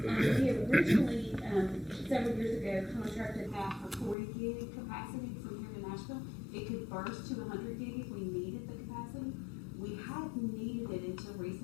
we originally, several years ago, contracted that for 40 gig capacity from here to Nashville. It could burst to 100 gig if we needed the capacity. We hadn't needed it until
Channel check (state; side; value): drops out; right; at 4.2 s